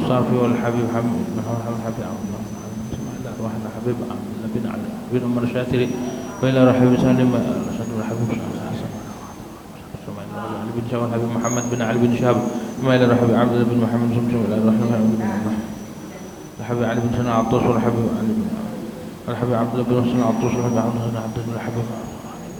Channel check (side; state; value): both; identical; correlation 1.00